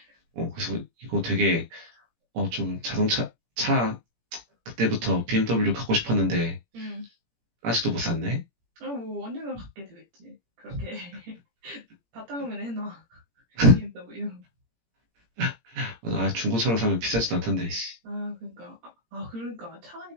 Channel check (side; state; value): left; late; 17 ms